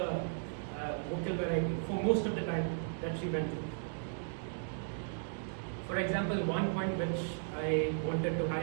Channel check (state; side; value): silent; left; digital silence